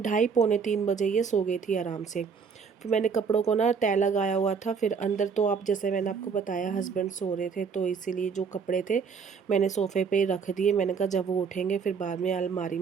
बजे ये सो गई थी आराम से। फिर मैंने कपड़ों को ना तय लगाया हुआ था, फिर अंदर तो आप जैसे मैंने आपको बताया हस्बैंड सो रहे थे, तो इसीलिए जो कपड़े थे मैंने सोफ़े पे रख दिए। मैंने कहा जब वो उठेंगे फिर बाद में अलमारी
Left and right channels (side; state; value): left; quieter; 5.9 dB